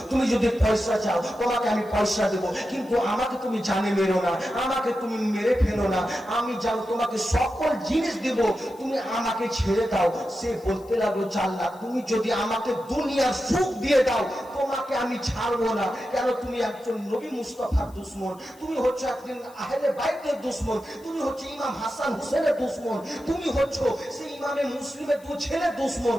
তুমি যদি পয়সা চাও তোমাকে আমি পয়সা দেবো, কিন্তু আমাকে তুমি জানে মেরো না, আমাকে তুমি মেরে ফেলো না, আমি যাও তোমাকে সকল জিনিস দেব, তুমি আমাকে ছেড়ে দাও। সে বলতে লাগলো, জাল্লাদ তুমি যদি আমাকে দুনিয়ার সুখ দিয়ে দাও তোমাকে আমি ছাড়বো না। কেন? তুমি একজন নবী মুস্তাফার দুশ্মন, তুমি হচ্ছে একজন আহলে বাইতের দুশ্মন, তুমি হচ্ছে ইমাম হাসান হুসেনের দুশ্মন, তুমি হচ্ছে সেই ইমামে মুসলিমের দু ছেলে দুশ্মন,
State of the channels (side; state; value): left; noise; hiss, 26 dB below the sound